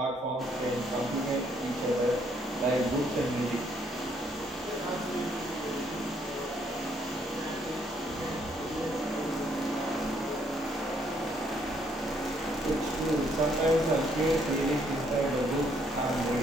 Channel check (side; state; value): both; normal; correlation 0.69